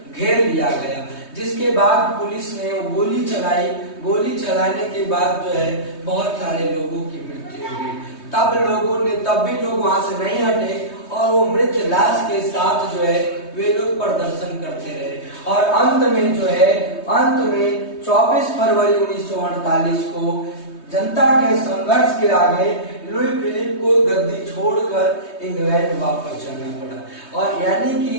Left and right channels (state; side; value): late; right; 3.2 ms